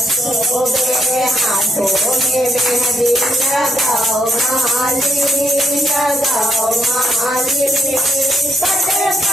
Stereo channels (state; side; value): normal; both; correlation 0.78